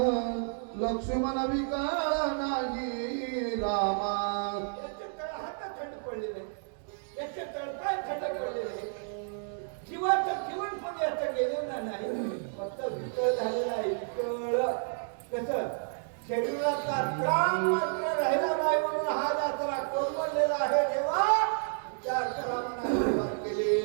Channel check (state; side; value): silent; left; digital silence